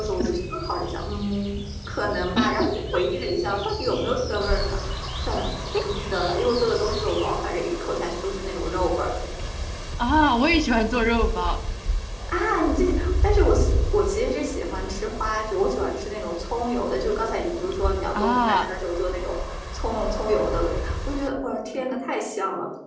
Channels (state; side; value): identical; both; correlation 1.00